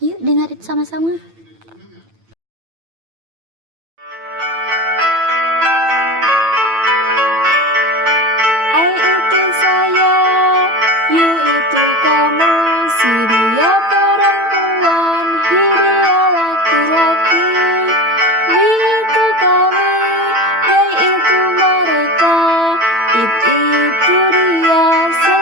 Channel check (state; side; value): late; left; 9.0 ms